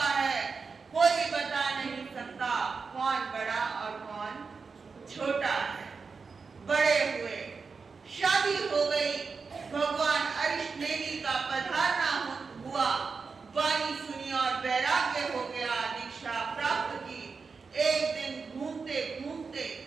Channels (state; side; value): quieter; left; 4.9 dB